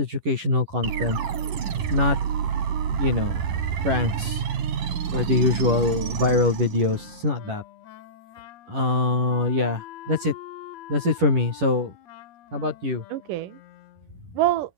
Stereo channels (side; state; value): left; late; 11 ms